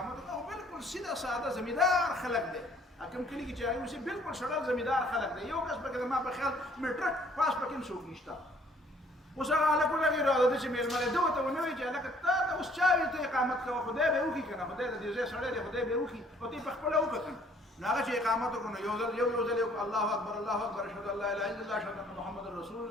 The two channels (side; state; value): both; normal; correlation 0.60